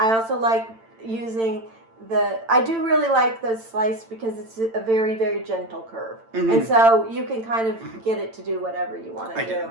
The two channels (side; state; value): left; late; 8.9 ms